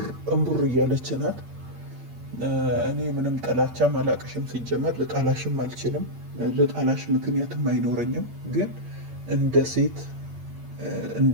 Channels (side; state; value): left; late; 8.7 ms